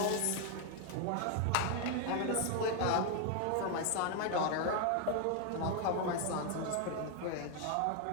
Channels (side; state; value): both; different; correlation 0.00